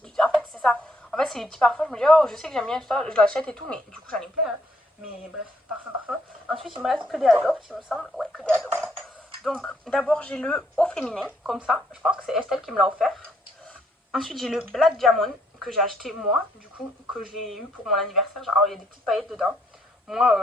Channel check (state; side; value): normal; both; correlation 0.71